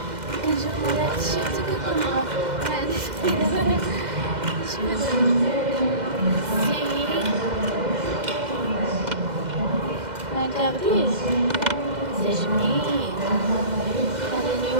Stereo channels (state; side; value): late; left; 2.0 ms